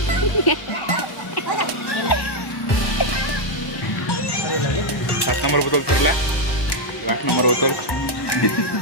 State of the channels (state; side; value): late; right; 1.1 ms